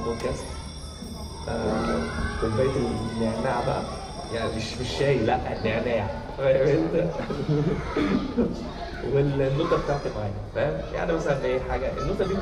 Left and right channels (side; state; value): both; identical; correlation 1.00